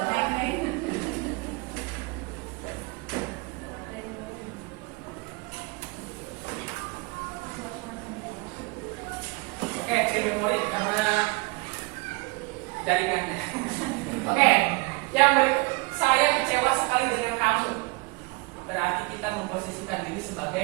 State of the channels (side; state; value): left; quieter; 26.5 dB